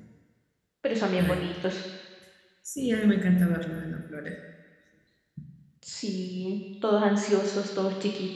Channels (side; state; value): both; identical; correlation 1.00